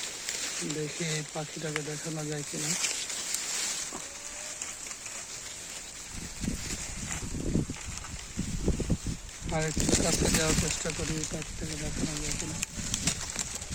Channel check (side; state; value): both; identical; correlation 1.00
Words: দেখি এই পাখিটাকে দেখানো যায় কিনা। আর একটু কাছে যাওয়ার চেষ্টা করি, পাখিটাকে দেখানো যায় কিনা।